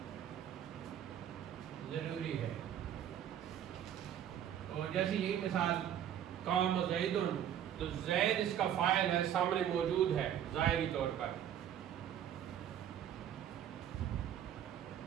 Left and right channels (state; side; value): quieter; left; 10.2 dB